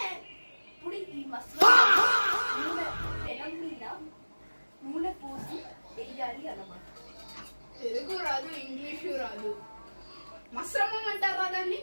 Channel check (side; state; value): both; inverted; correlation -1.00